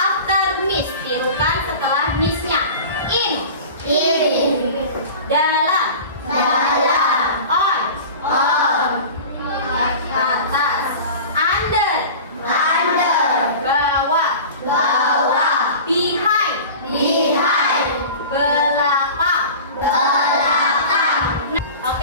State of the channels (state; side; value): inverted; both; correlation -0.36